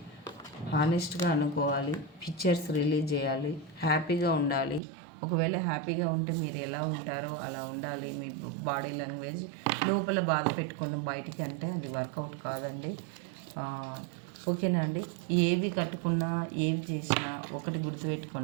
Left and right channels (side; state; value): left; drops out; at 4.8 s